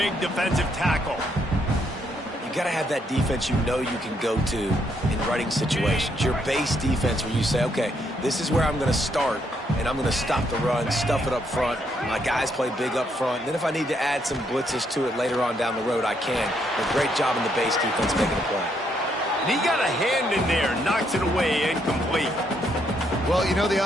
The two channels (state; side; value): normal; both; correlation 0.74